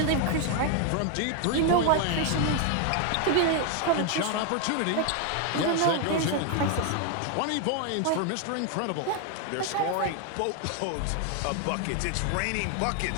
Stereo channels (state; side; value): different; both; correlation 0.01